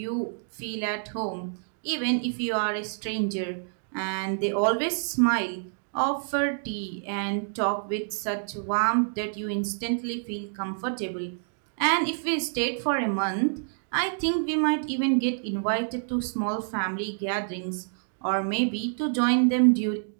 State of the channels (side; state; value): left; silent; digital silence